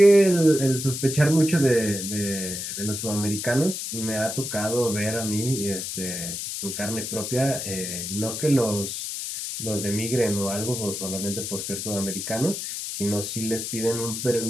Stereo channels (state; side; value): noise; left; hiss, 5 dB below the sound